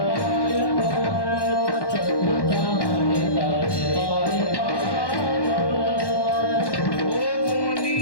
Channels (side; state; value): right; late; 1.1 ms